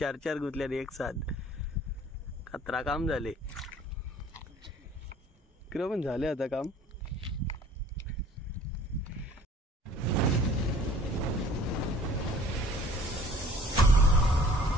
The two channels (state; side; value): normal; both; correlation 0.52